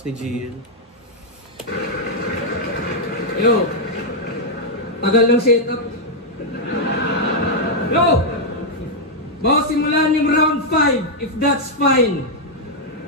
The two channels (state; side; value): normal; both; correlation -0.03